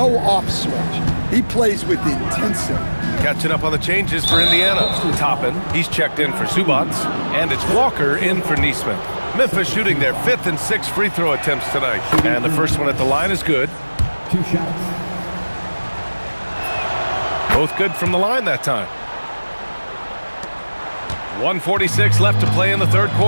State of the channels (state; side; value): inverted; both; correlation -1.00